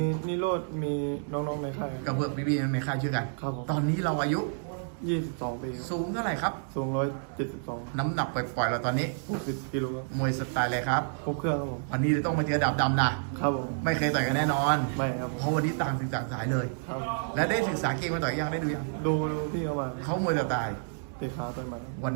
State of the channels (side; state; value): left; silent; digital silence